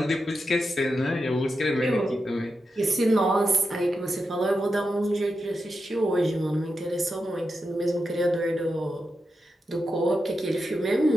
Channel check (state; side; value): normal; both; correlation 0.88